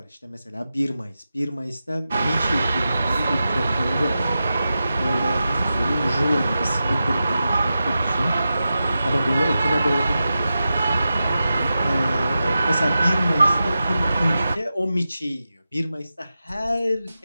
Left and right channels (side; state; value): both; inverted; correlation -0.92